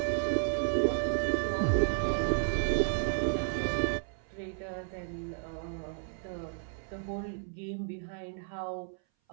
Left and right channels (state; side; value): silent; left; 56 dB below the other